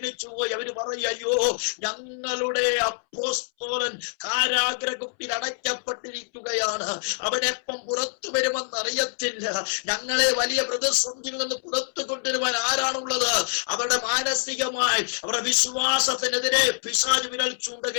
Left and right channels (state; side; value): silent; right; 61 dB below the other